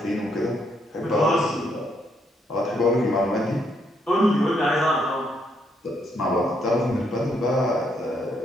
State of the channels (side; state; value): both; normal; correlation 0.75